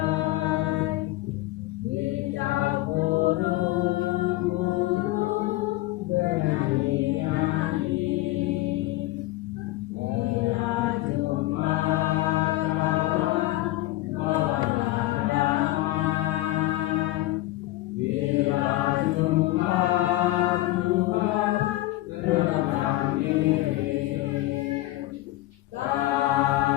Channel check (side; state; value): right; quieter; 17.5 dB